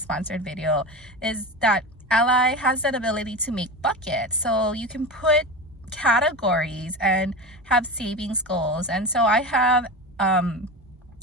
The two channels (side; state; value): both; normal; correlation 0.25